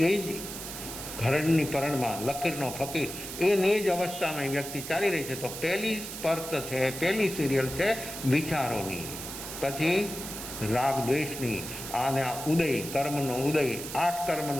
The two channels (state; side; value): noise; right; hiss, 9 dB below the sound